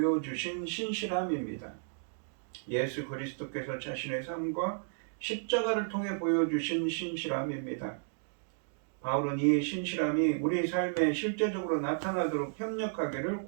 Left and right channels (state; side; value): silent; left; digital silence